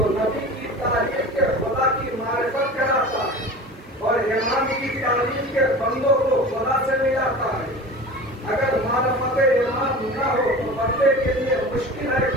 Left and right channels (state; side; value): normal; both; correlation 0.35